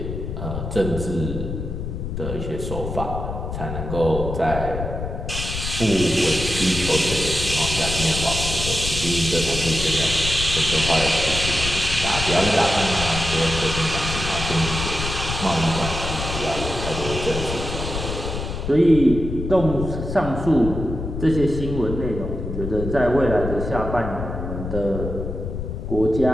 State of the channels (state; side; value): noise; left; rumble, 5 dB below the sound